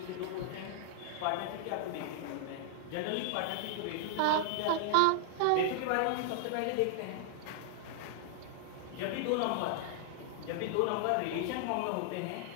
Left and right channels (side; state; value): both; different; correlation 0.00